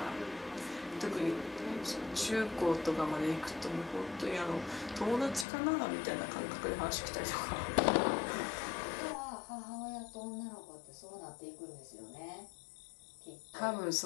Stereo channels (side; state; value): right; drops out; at 5.5 s